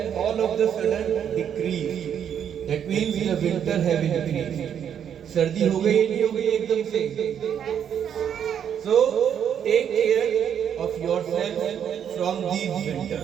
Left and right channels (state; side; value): quieter; left; 8.7 dB